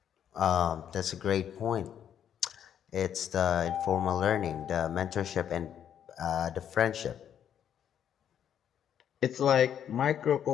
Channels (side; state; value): right; quieter; 9.3 dB